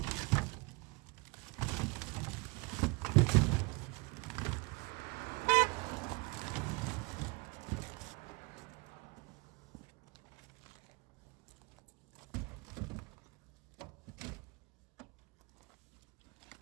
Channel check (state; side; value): quieter; left; 27.3 dB